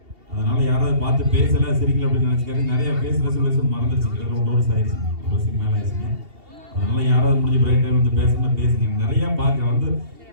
அதனால யாராவது பார்த்து பேசல சிரிக்கல அப்படின்னு நினைச்சுக்காரு. நிறைய பேசுற சொல்ல மறந்துருச்சு. கிட்டத்தட்ட 1 வருஷம் ஆயிடுச்சு. 1 வருஷத்துக்கு மேல ஆயிடுச்சுங்க. அதனால யாராவது முடிஞ்ச பிரேக் டைம் வந்து பேசணும்னா பேசுங்க. நிறைய பார்க்க வந்து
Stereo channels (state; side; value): late; left; 2.7 ms